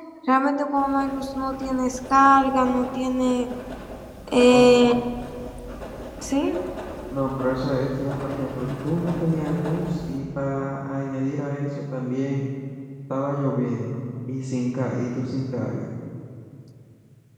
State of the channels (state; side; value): identical; both; correlation 1.00